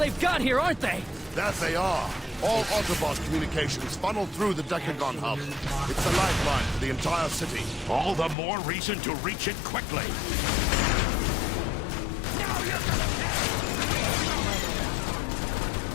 got here, aren't they? That they are. All Autobot communications funnel through the Decagon hub. It's a lifeline for the entire city. All the more reason to reach it quickly. Now you're gonna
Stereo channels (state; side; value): drops out; right; at 8.3 s